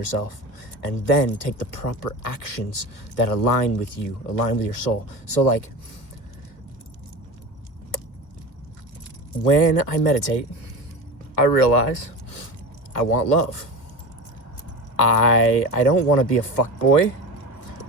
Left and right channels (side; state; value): right; late; 1.5 ms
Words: and then take the proper actions that align with you, align with your soul. So like, when I meditate, I realize I want love. I don't want to be a fuckboy.